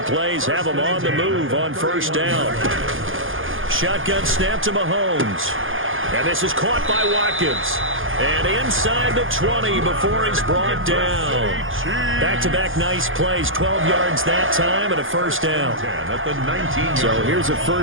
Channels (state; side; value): late; left; 0.58 ms